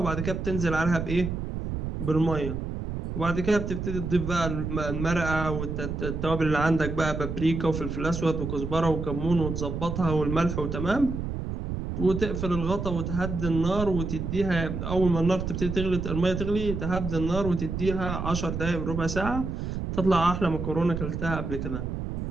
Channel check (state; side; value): noise; right; rumble, 4 dB below the sound